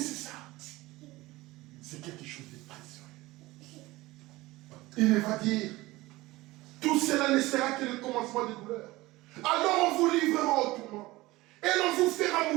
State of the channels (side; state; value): left; quieter; 19.6 dB